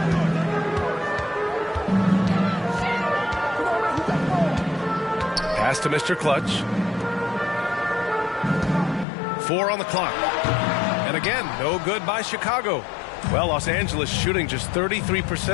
Pass to Mr. Clutch. 4 on the clock. And again, no good by Chicago. Well, Los Angeles shooting just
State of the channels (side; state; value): right; drops out; at 9.1 s